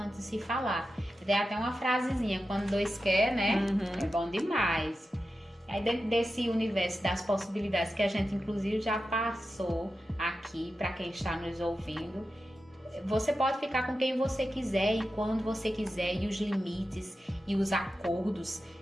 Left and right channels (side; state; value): both; normal; correlation 0.91